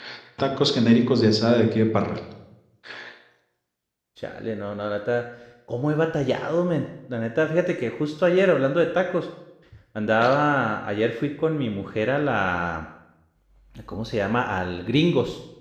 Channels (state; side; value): identical; both; correlation 1.00